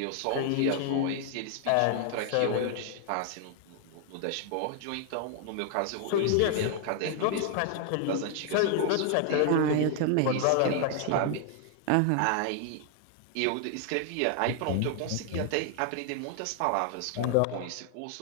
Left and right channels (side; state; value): both; different; correlation 0.00